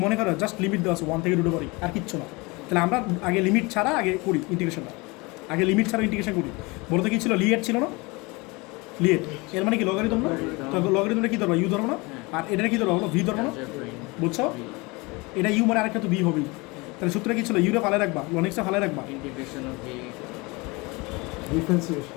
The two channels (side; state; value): right; quieter; 25.6 dB